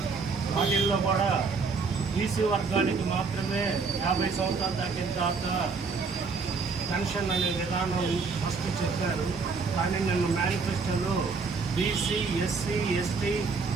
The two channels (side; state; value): left; quieter; 4.7 dB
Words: వాటిల్లో కూడా బీసీ వర్గానికి మాత్రమే 50 సంవత్సరాలు దాటిన తర్వాత పెన్షన్ అనే విధానం ఫస్ట్ చెప్పారు. కానీ నిన్న మేనిఫెస్టోలో బీసీ, ఎస్సీ, ఎస్టీ,